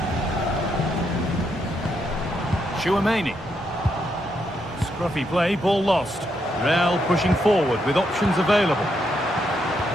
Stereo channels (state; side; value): normal; both; correlation 0.79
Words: Chouameni. Scruffy play, ball lost. Real pushing forward with options available.